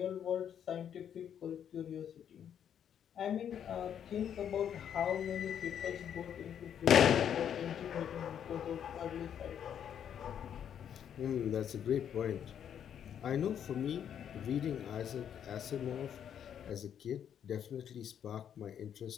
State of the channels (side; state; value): right; quieter; 9.0 dB